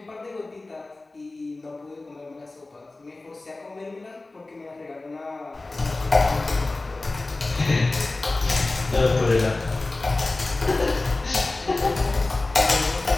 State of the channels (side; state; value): right; quieter; 3.2 dB